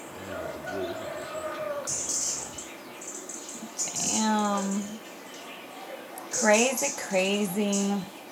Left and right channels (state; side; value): identical; both; correlation 1.00